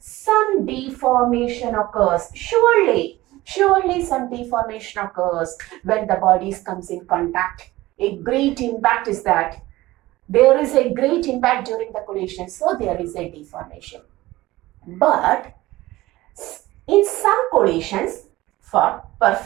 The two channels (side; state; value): left; quieter; 17.9 dB